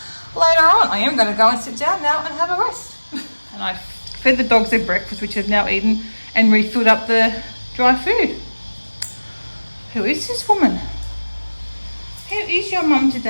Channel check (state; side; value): inverted; both; correlation -1.00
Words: later on. I am going to go and sit down now and have a rest. And I fed the dogs their breakfast, which they've now eaten, and refilled up the dry food. Who is this woman? How is your mum